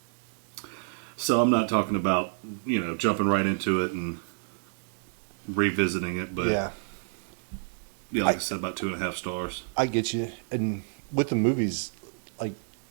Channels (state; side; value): silent; left; digital silence